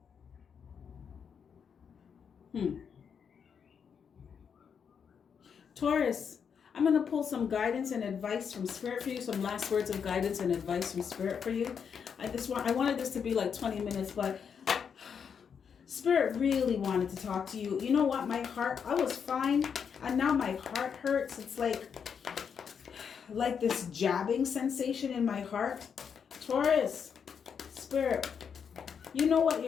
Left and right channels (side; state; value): right; quieter; 7.0 dB